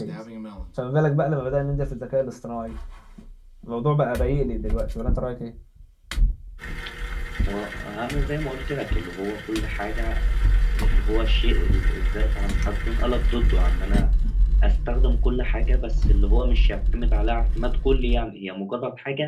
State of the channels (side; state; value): both; identical; correlation 1.00